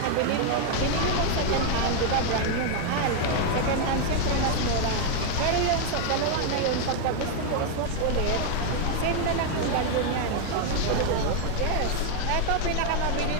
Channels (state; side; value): different; both; correlation 0.00